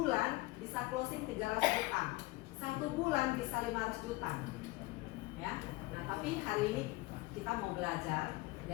bisa closing 300 juta, 1 bulan bisa 500 juta. Ya, nah tapi hari ini kita mau belajar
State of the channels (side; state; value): right; quieter; 21.1 dB